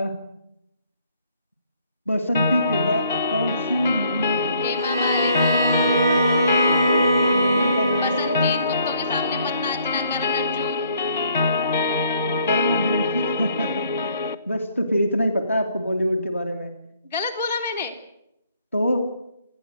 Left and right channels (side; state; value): both; inverted; correlation -0.66